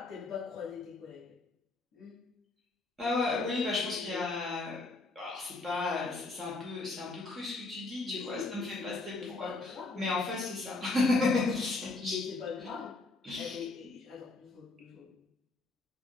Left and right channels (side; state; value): right; quieter; 3.3 dB